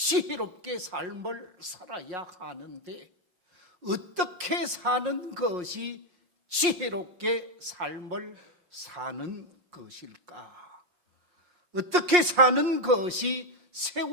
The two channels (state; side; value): late; left; 5.6 ms